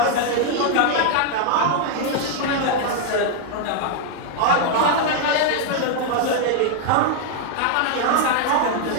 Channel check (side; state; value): both; different; correlation 0.00